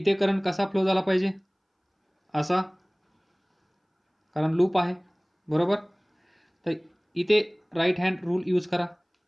करंट कसा फ्लो झाला पाहिजे, असा, कारण लूप आहे, बरोबर. तर इथे राईट हँड रूल यूज करा.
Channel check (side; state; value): both; identical; correlation 1.00